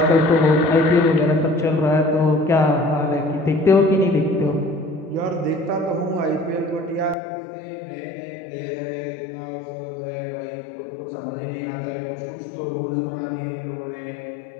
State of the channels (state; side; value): drops out; right; at 7.2 s